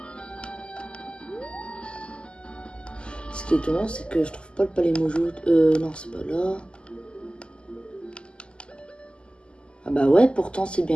Ce qui est étonnant, c'est que je trouve pas le palais Mojo. Non, c'est pas là. Ah bah ouais, pourtant c'est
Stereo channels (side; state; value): right; late; 0.050 ms